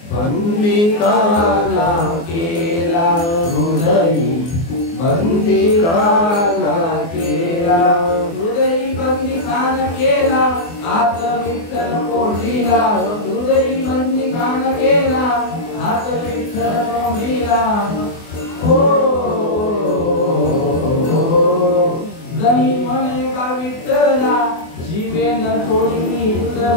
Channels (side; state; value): right; late; 24 ms